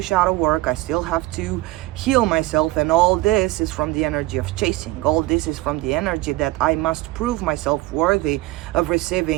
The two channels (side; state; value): left; quieter; 18.7 dB